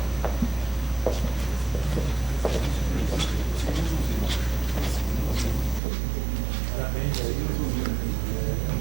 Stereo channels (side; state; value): left; drops out; at 5.8 s